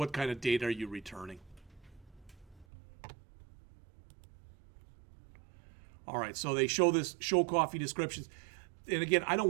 kind of data are you returning? All right, so they show coffee descriptions. And again, I don't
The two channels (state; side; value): drops out; left; at 2.7 s